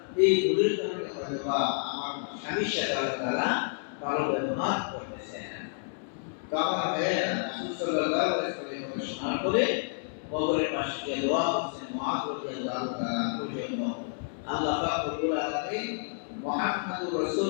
এই ভুলের কারণে হয়তো বা আমার স্বামীর সাথে আল্লাহ তাআলা ভালো ব্যবহার করতেছেন। তো আমার ভাইয়েরা, রাসূল সাল্লাল্লাহু আলাইহি ওয়াসাল্লাম শোনার পরে কবরের পাশে গিয়ে দোয়া করছেন মুআয রাদিয়াল্লাহু তাআলা পর্যন্ত। আল্লাহ পাক রব্বুল আলামিন মুহাম্মদুর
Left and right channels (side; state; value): right; silent; digital silence